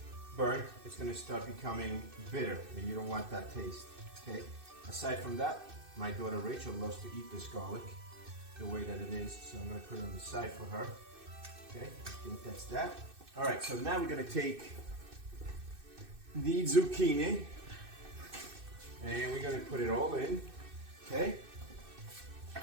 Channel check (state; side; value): late; left; 2.6 ms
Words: burnt, it's going to start becoming bitter and you don't want that taste, okay? Aside from that, my daughter Rachel loves to eat this garlic the way that it is, so I'm going to put it on the side for her, okay? I think that's that. All right, so now we're going to take the zucchini and we're going to put it all in, okay?